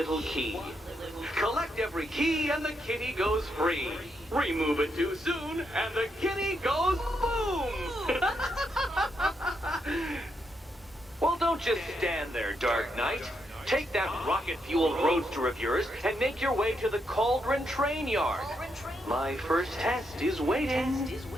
key. Collect every key and the kitty goes free. Remove it too soon and the kitty goes boom! Well, don't just stand there, Dark Knight. Take that rocket-fueled roadster of yours and make your way to the Cauldron Train Yard. My first test is waiting.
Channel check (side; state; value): both; normal; correlation 0.80